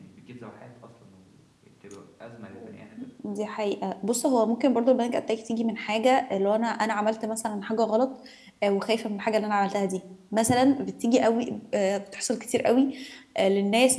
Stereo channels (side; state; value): both; identical; correlation 1.00